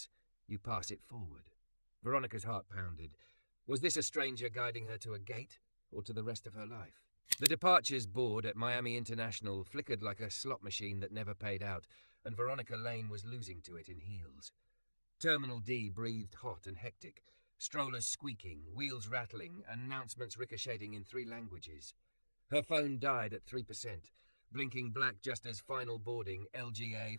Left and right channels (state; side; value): inverted; both; correlation -1.00